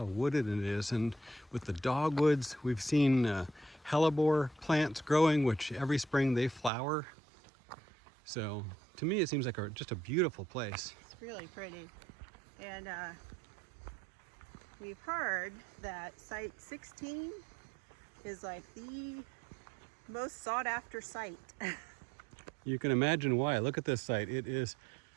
wooded it is, and with the dogwoods, we've seen hellebore plants growing, which every spring they flower. So to me, it seems like just a beautiful place. It's really pretty. And we've heard that site 16 is like the most sought after site. You can imagine why. Look at this site. It is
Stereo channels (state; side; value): drops out; left; at 6.7 s